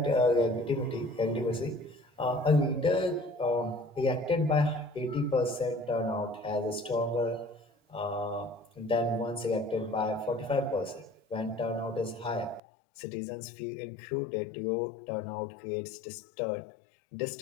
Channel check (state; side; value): drops out; right; at 12.6 s